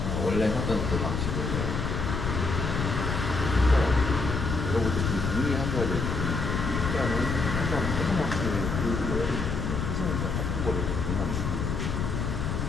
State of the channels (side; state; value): left; noise; rumble, 2 dB below the sound